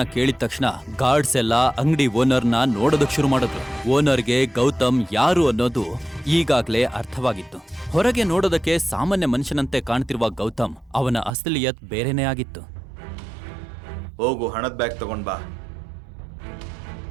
ಕೇಳಿದ ತಕ್ಷಣ ಗಾರ್ಡ್ಸ್ ಎಲ್ಲ ಅಂಗಡಿ ಓನರ್ನ ನೋಡೋದಕ್ ಶುರು ಮಾಡಿದ್ರು. ಓನರ್ಗೆ ಗೌತಮ್ ಯಾರು ಅನ್ನೋದು ಈಗಾಗ್ಲೇ ಅರ್ಥವಾಗಿತ್ತು. ಹೊರಗೆ ನೋಡೋದಕ್ಕೆ ಸಾಮಾನ್ಯ ಮನುಷ್ಯನಂತೆ ಕಾಣ್ತಿರುವ ಗೌತಮ್ ಅವನ ಅಸಲಿಯತ್ ಬೇರೆನೇ ಆಗಿತ್ತು. ಹೋಗು, ಹಣದ ಬ್ಯಾಗ್ ತಗೊಂಡ್ ಬಾ.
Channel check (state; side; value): drops out; left; at 11.4 s